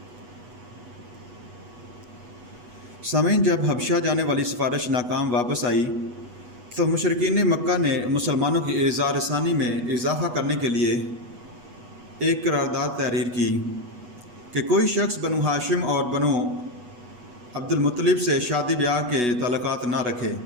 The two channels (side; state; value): left; late; 8.2 ms